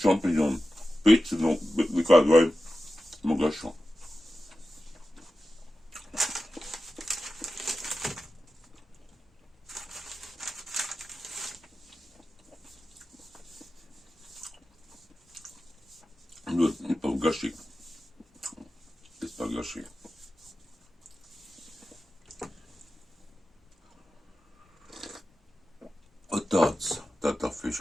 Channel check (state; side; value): normal; both; correlation 0.93